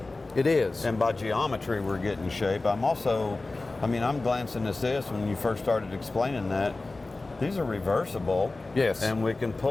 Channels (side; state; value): right; quieter; 3.3 dB